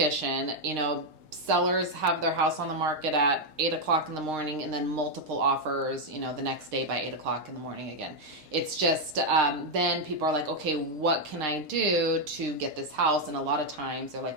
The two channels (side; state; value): left; late; 6.5 ms